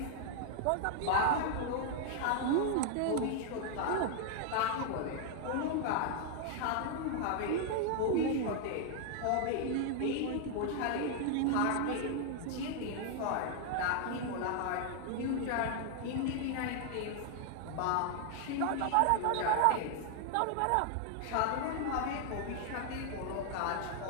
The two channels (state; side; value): different; both; correlation 0.00